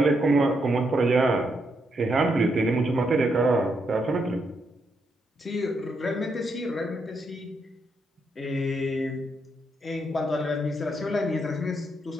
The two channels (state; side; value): normal; both; correlation 0.79